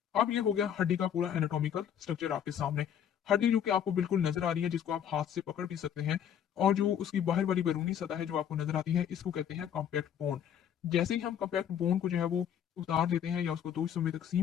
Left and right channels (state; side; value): quieter; right; 9.2 dB